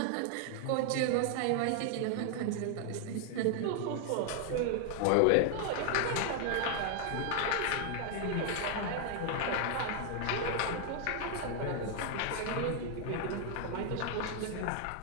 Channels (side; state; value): both; different; correlation 0.00